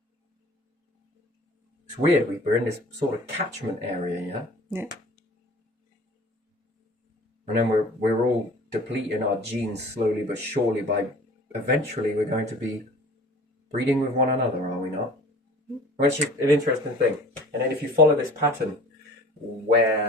It's weird, we're in this sort of catchment area, yeah? Yeah. And then we're all depleting our genes slowly but surely by eventually we're going to be breeding with one another, are we not? Which is an interesting thing. And then if you follow this pattern,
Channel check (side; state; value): both; normal; correlation 0.44